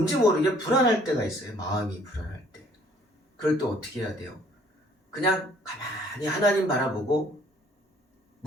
모르게 불안할 때가 있어요. 마음이 불안할 때. 그럴 때 어떻게 해야 돼요? 그냥 가만히 하나님 바라보고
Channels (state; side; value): normal; both; correlation 0.59